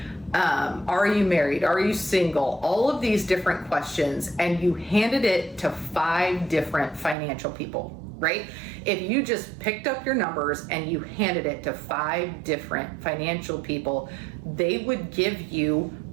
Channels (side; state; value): left; drops out; at 7.2 s